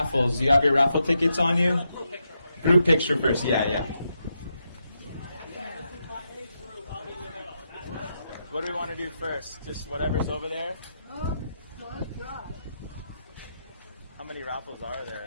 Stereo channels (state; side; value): inverted; both; correlation -0.84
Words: Do you have your raffle tickets on you? Group picture first. Yeah. What do we want to do first? Just whatever's over there? How many raffles are there?